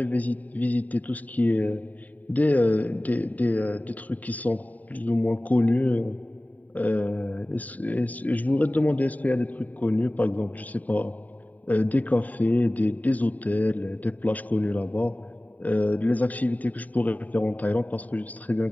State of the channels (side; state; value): right; late; 0.074 ms